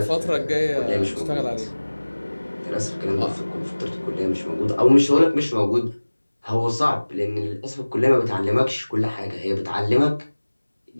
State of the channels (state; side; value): inverted; both; correlation -1.00